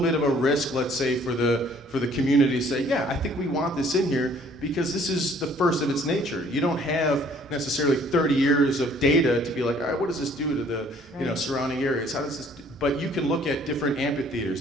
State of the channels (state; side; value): normal; both; correlation 0.58